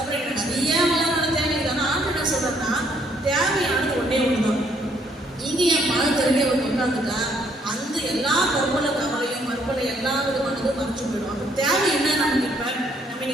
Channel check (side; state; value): both; normal; correlation 0.68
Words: நிறைய வளமான தேவை இருக்குது. ஆனால் ஆண்டு என்ன சொல்றதுன்னா தேவையானது ஒன்றே ஒன்றுதான். இங்கே என் பணம் தெரிஞ்ச ஒரு உட்காந்துட்டா அந்த எல்லா கவலையும் மறுபலை எல்லா விதமானதும் மறைச்சு போயிடும். அப்போ தேவை என்ன நமக்கு? இப்போ நம்ம